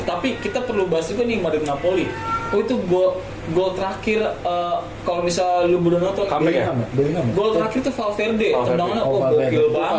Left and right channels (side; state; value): both; identical; correlation 1.00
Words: kita perlu bahas juga nih Madrid Napoli. Oh itu gol terakhir kalau misal lu belum nonton Comeback ya? Bellingham. gol terakhir tuh Valverde, Valverde. tendangannya Oh, gokil Valverde.